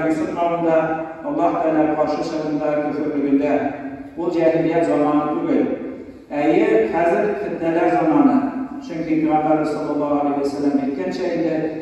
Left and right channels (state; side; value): identical; both; correlation 1.00